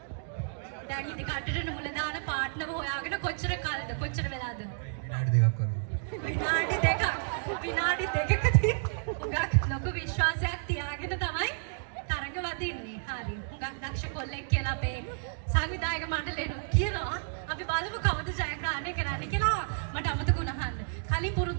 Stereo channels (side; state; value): left; silent; digital silence